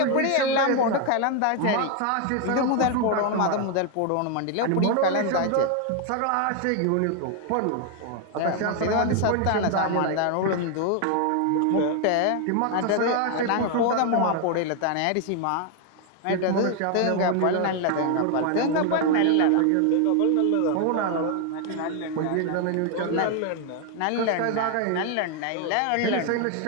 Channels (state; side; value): different; both; correlation 0.01